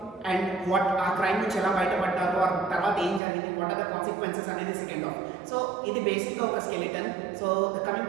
and what ఆ క్రైమ్ నుంచి ఎలా బయటపడ్డారు, ఆ తర్వాత ఏం జరిగింది, వాట్ ఆర్ ద కాన్సిక్వెన్సెస్ అనేది సెకండ్ ఆఫ్. సో ఇది బేసిక్గా ఒక skeleton. So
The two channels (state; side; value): drops out; left; at 3.2 s